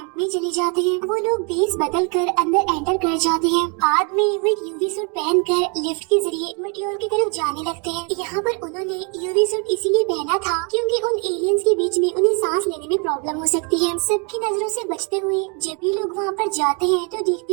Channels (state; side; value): quieter; left; 35.2 dB